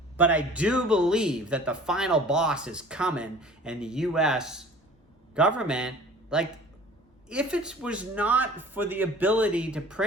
But I do believe that the final boss is coming, and the U.S. government, like, if it was not for the ability to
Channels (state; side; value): normal; both; correlation 0.46